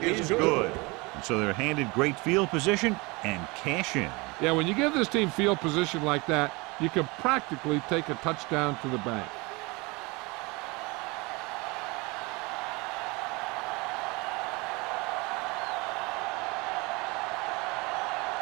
is good. And so they're handed great field position and cash in. Yeah, when you give this team field position like that, you can practically take a touchdown to the bank.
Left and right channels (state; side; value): quieter; left; 25.7 dB